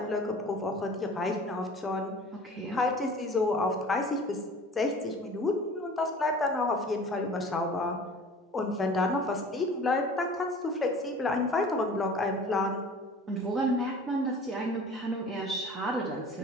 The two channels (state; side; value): normal; both; correlation 0.43